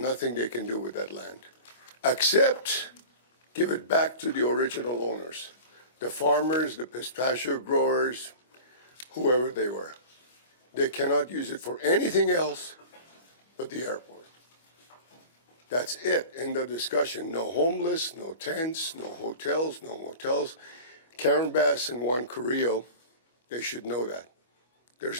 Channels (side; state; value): both; inverted; correlation -0.36